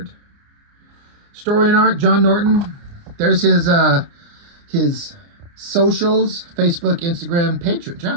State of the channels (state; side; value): late; left; 29 ms